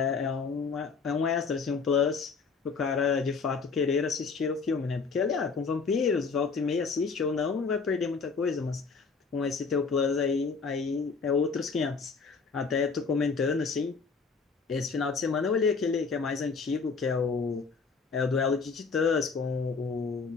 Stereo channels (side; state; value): right; quieter; 4.9 dB